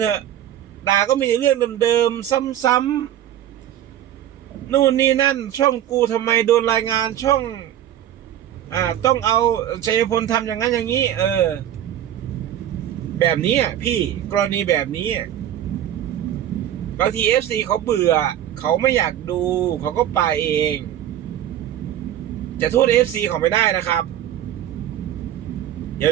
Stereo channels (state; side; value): quieter; left; 11.4 dB